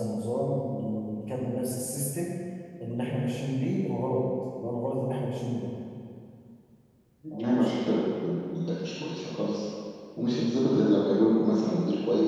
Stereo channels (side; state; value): both; identical; correlation 1.00